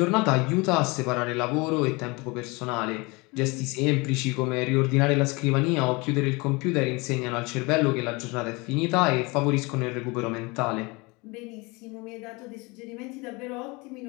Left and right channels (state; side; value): quieter; right; 26.2 dB